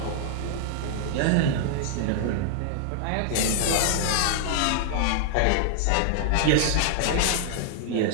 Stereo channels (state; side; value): different; both; correlation -0.01